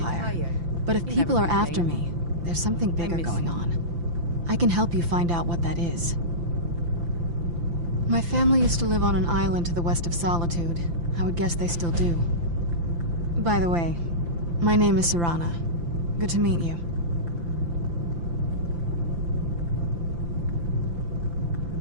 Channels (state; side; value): late; left; 5.9 ms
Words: But if people are after me, there's something bigger going on. I can help you find out what that is. My family used to live on an island to the west of Solitude. I would guess they still do. By the way, my name is Serana. Good to meet you.